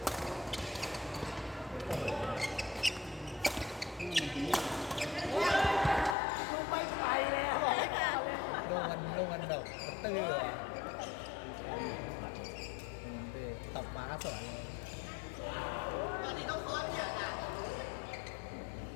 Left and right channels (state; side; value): drops out; right; at 6.2 s